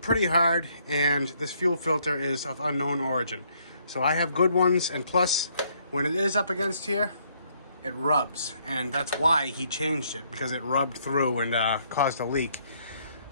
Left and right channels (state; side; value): inverted; both; correlation -0.69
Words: hard, and this fuel filter is of unknown origin. So I have good ones, and plus, when it is up against here, it rubs. And that's why he changed it, because it rubbed through and caused a leak.